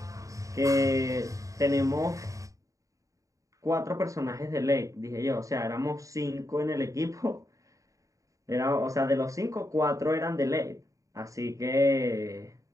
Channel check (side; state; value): left; late; 0.16 ms